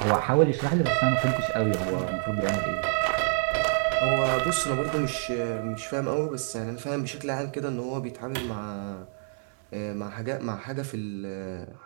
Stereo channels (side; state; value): left; silent; 60 dB below the other